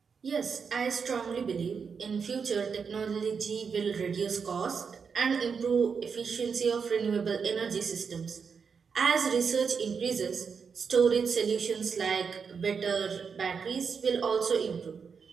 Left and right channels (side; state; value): left; quieter; 5.9 dB